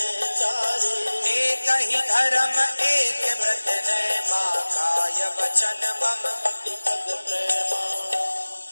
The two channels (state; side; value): inverted; both; correlation -1.00